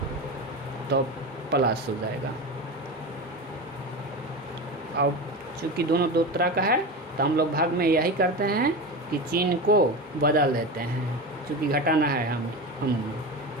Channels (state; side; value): normal; both; correlation 0.24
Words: तो प्लस हो जाएगा। अब चूँकि दोनों दो तरह का है तो हम लोग भाग में यही करते हैं कि चिन्ह को बदल देते हैं, चूँकि घटाना है हम